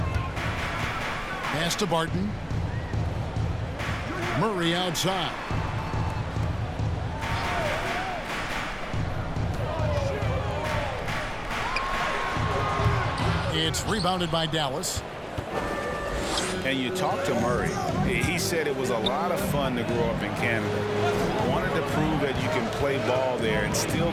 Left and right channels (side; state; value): both; identical; correlation 1.00